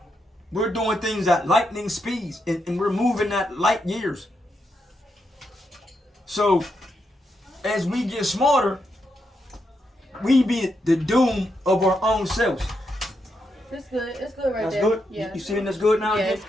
We're doing things at lightning speeds, and we're moving at light years. So as we get smarter, we be the doom of our own selves. It's good. It's good right That's there. good? Yeah. You seeing that's good now? Yeah, again? it's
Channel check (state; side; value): normal; both; correlation 0.82